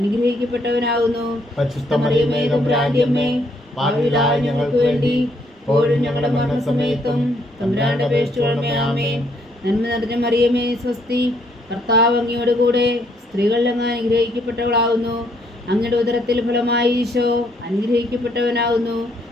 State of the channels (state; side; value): normal; both; correlation 0.70